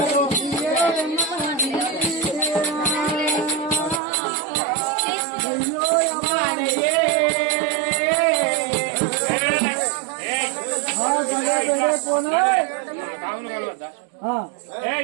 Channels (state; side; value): drops out; left; at 4.0 s